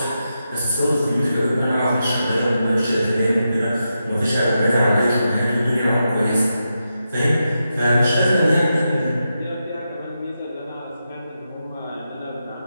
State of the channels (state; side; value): inverted; both; correlation -0.87